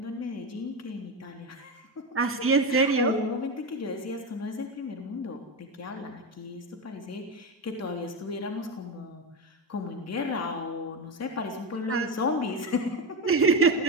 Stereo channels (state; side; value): normal; both; correlation 0.15